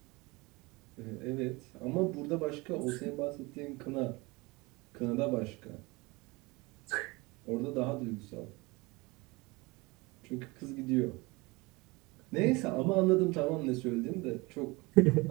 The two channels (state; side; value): quieter; left; 24.5 dB